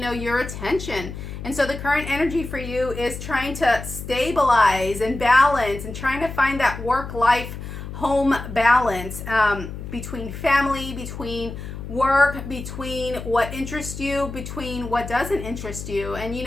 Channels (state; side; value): noise; left; hum, 9 dB below the sound